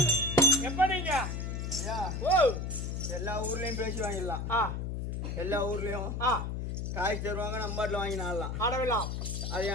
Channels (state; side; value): noise; left; hum, 3 dB below the sound